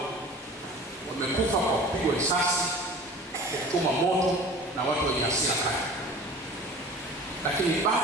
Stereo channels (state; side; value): normal; both; correlation 0.41